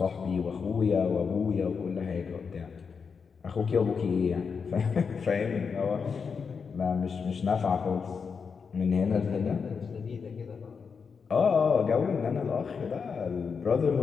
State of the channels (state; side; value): quieter; right; 5.8 dB